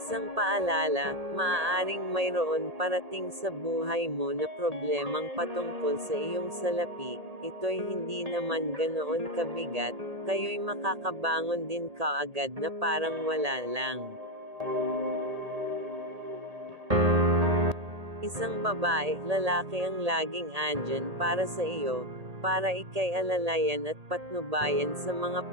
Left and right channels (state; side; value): late; left; 1.8 ms